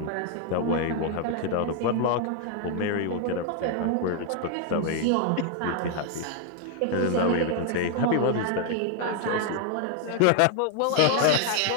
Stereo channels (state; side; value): different; both; correlation 0.00